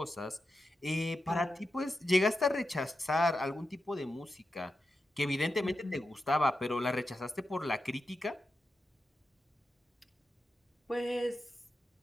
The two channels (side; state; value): both; normal; correlation 0.89